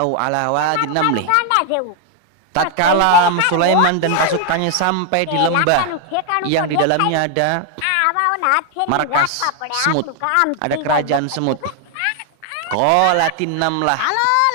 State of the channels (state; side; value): different; both; correlation 0.00